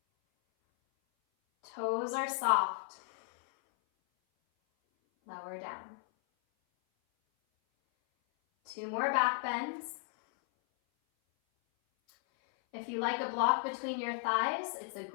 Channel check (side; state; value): right; silent; 55 dB below the other